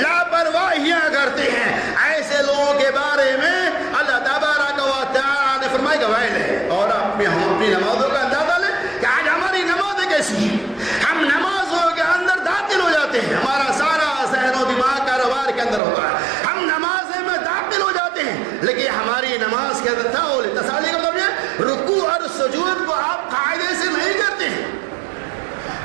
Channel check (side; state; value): left; drops out; at 15.8 s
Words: کرتے ہیں. ایسے لوگوں کے بارے میں اللہ تبارک و تعالیٰ نے فرمایا کہ ویل ہے. اور ہم اپنی نمازوں کا اندازہ لیں کہ آج ہماری نمازیں کیسی ہیں. ہم نمازوں کے اندر داخل ہو جاتے ہیں ہمارا سارا ذہن و دماغ کاروبار کے اندر ہوتا ہے. ہم نمازیں میں داخل ہو جاتے ہیں لیکن ہماری نماز کے اندر تساہلی کا مطلب یہ رکوع اور سجود کو آپ قاعدے سے نہیں کرتے ہیں